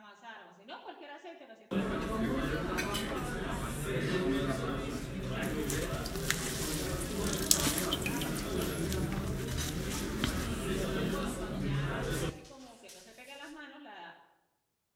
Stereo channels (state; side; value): identical; both; correlation 1.00